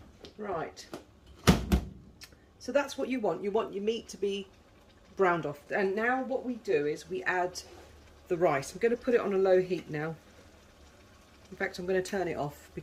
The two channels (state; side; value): identical; both; correlation 1.00